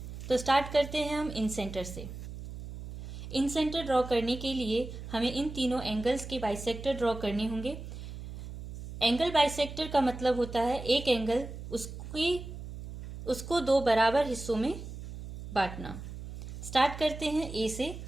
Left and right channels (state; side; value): noise; right; hum, 10 dB below the sound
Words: तो स्टार्ट करते हैं हम इन सेंटर से। इन सेंटर ड्रॉ करने के लिए हमें इन तीनों एंगल्स के बाइसेक्टर ड्रॉ करने होंगे। एंगल बाइसेक्टर का मतलब होता है एक एंगल उसको दो बराबर हिस्सों में बांटना। स्टार्ट करते हैं ए से।